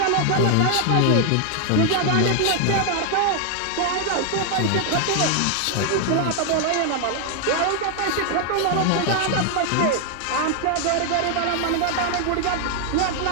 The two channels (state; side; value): different; both; correlation 0.00